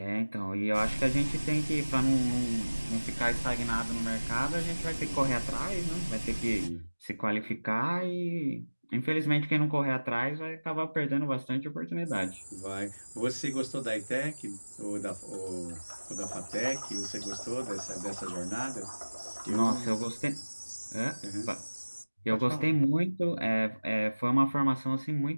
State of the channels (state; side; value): inverted; both; correlation -1.00